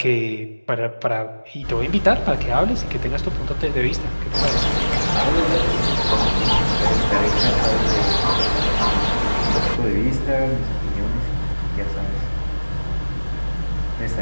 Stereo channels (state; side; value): inverted; both; correlation -1.00